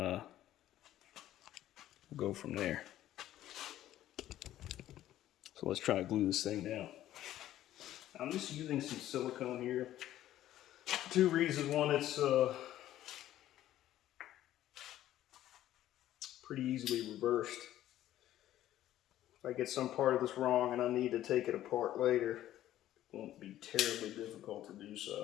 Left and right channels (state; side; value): quieter; right; 13.1 dB